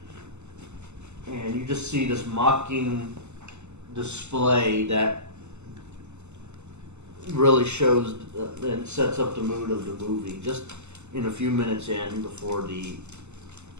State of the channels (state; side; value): late; left; 0.83 ms